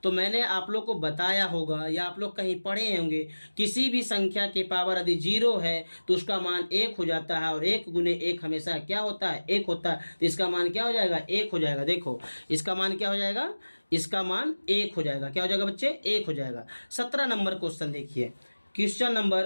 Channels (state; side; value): inverted; both; correlation -1.00